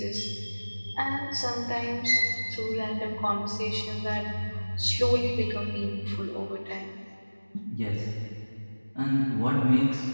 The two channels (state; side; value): inverted; both; correlation -1.00